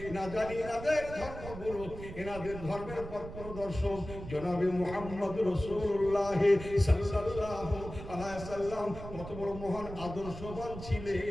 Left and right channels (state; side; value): noise; right; rumble, 11 dB below the sound